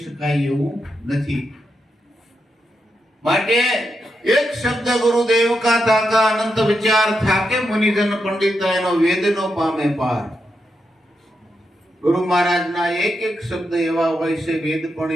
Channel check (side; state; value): both; normal; correlation 0.85